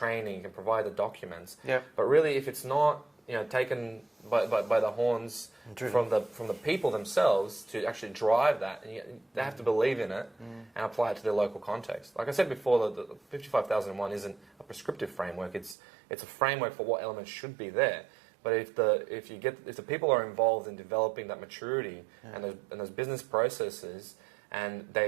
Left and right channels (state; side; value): drops out; left; at 15.8 s